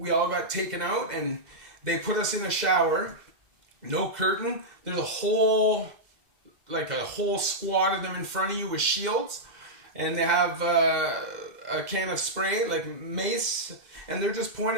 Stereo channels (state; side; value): late; left; 2.0 ms